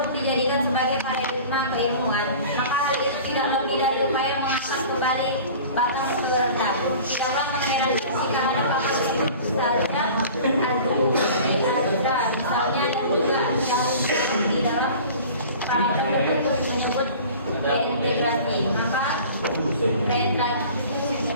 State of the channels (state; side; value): inverted; both; correlation -0.42